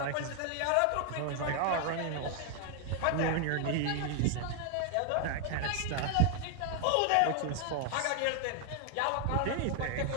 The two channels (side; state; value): both; different; correlation 0.00